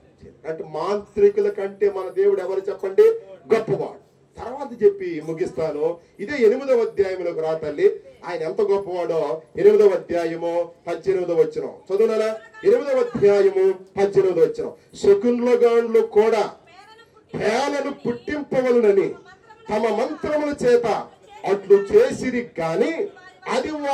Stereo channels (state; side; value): identical; both; correlation 1.00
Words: అంటే మాంత్రికుల కంటే మన దేవుడు ఎవరు చెప్పండి? గొప్పవాడు. తర్వాత చెప్పి ముగిస్తాను. ఇదే 8వ అధ్యాయంలోకి రా తల్లి. ఆయన ఎంత గొప్పవాడో 8వ అధ్యాయము 18వ వచనం చదువునా. 8వ అధ్యాయము 18వ వచనం. శకునులగాండ్లు కూడా పేలను పుట్టింపవలనని తమ మంత్రముల చేత అట్లు చేసిరి గాని అది